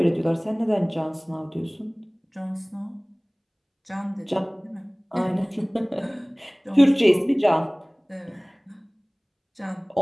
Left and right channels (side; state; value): both; identical; correlation 1.00